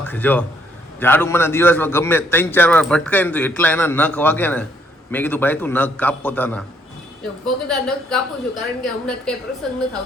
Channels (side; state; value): both; normal; correlation 0.69